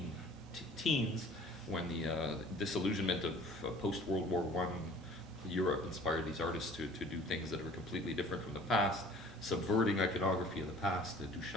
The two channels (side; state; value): both; normal; correlation 0.49